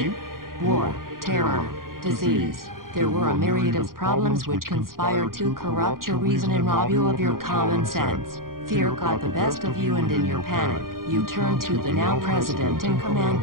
War, terror, disease. There were a myriad of problems which conspired to corrupt your reason and rob you of your common sense. Fear got the best of you, and in your panic, you turned to the now president in command,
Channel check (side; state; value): left; late; 0.91 ms